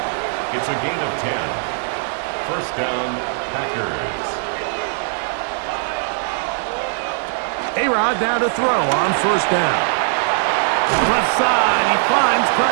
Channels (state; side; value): silent; left; digital silence